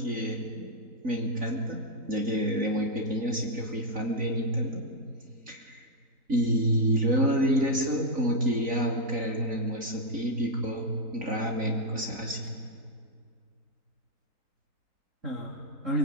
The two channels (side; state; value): left; late; 3.9 ms